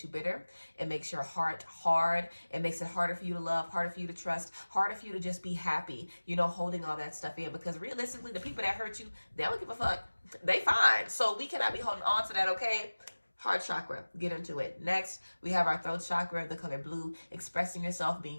you bitter. It makes your heart hard. It makes it harder for you to love, harder for you to trust, harder for you to just be happy, you know, holding all that stuff in. Because realistically, the people that hurt you, they don't give a fuck. They fine. So we cannot be holding on to that, okay? Heart chakra, get into it. Next, we have our throat chakra, the color blue, expressing yourself,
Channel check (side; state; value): both; inverted; correlation -1.00